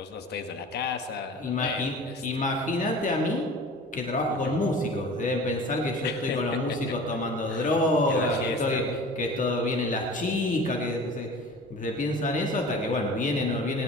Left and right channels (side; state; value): both; normal; correlation 0.41